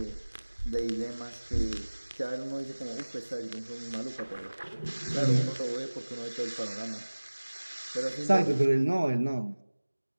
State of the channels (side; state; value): both; inverted; correlation -1.00